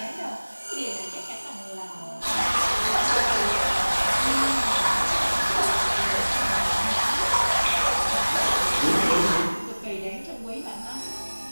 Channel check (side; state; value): both; inverted; correlation -1.00